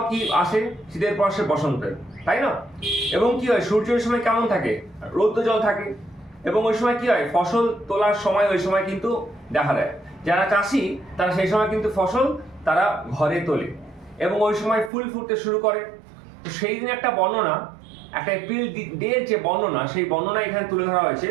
কি আসে? শীতের পর সে বসন্তের, তাই না? এবং কি হয়, সূর্য ওই সময় কেমন থাকে? রৌদ্র জল থাকে। এবং ওই সময় কি হয়, ফসল তোলার সময় ওই সময় কিন্তু দেখা দেয়। যারা চাষি তারা সেই সময় কিন্তু ফসল তারা ঘরে তোলে এবং ওই সময় ফুল ফুটতে শুরু করে। তো সেই দিন একটা বর্ণনা, একটা এপ্রিল ডের যে বর্ণনা, সেই বর্ণনা এখানে তুলে ধরা হয়েছে।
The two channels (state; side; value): drops out; left; at 14.9 s